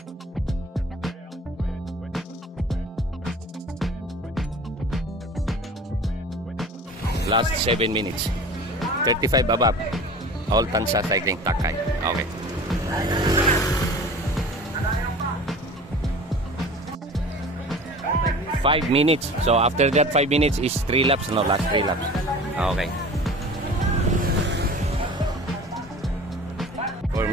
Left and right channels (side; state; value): both; normal; correlation 0.40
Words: Last 7 minutes. 35 above. All Tansa Cycling Takay. Okay. Five minutes. So after that 5 minutes is 3 laps. No, last 3 laps. Okay.